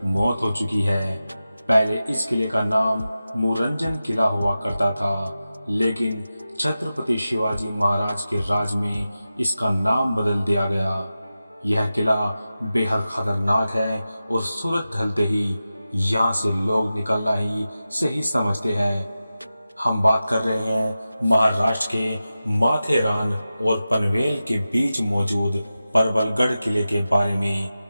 मौत हो चुकी है। पहले इस किले का नाम मुरंजन किला हुआ करता था, लेकिन छत्रपति शिवाजी महाराज के राज में इसका नाम बदल दिया गया। यह किला बेहद खतरनाक है और सूरज ढलते ही यहाँ से लोग निकलना ही सही समझते हैं। हम बात कर रहे हैं महाराष्ट्र के माथेरान और पनवेल के बीच मौजूद परबलगढ़ किले के बारे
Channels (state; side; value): inverted; both; correlation -0.93